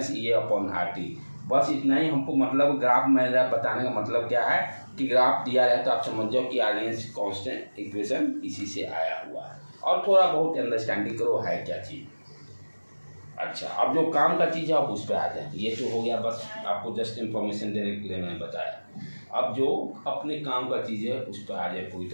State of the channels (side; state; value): both; inverted; correlation -1.00